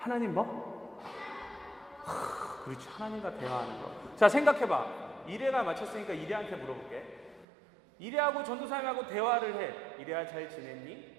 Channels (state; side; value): drops out; left; at 7.5 s